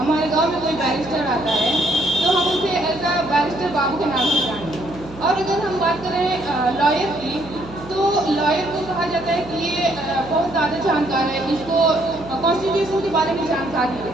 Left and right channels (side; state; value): right; noise; hum, 16 dB below the sound